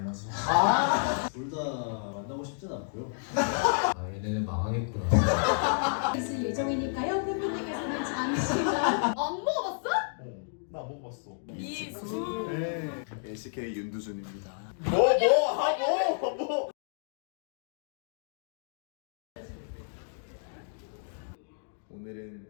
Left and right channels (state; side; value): silent; right; digital silence